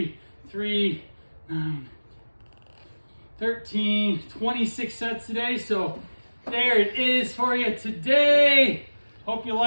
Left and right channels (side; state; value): both; inverted; correlation -1.00